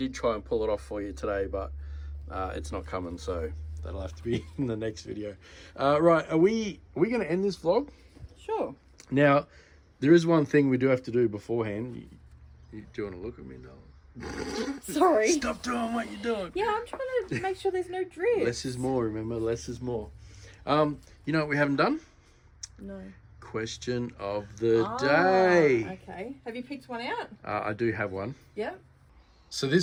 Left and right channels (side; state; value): both; identical; correlation 1.00